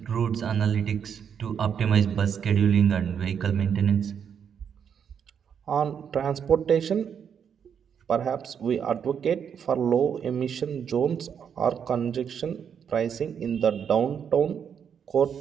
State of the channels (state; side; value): quieter; left; 7.7 dB